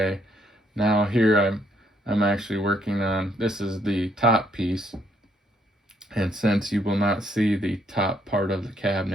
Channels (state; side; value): normal; both; correlation 0.70